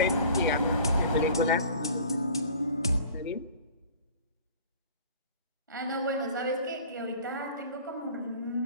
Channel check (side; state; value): both; inverted; correlation -0.45